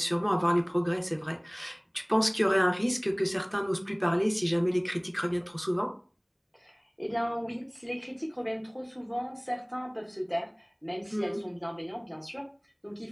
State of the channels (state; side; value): identical; both; correlation 1.00